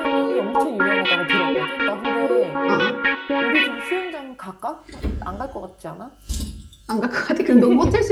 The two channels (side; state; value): both; identical; correlation 1.00